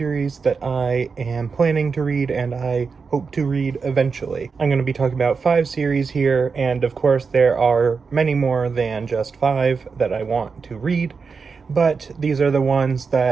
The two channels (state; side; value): quieter; left; 5.1 dB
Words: that I am planning to read and I hope to read eventually. I'm going to be talking about 5 series here, and of course there are many more than just 5 that I want to read, but these are the ones